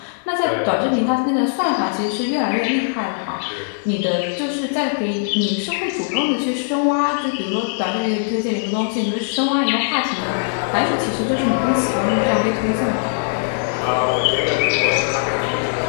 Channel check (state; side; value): silent; right; digital silence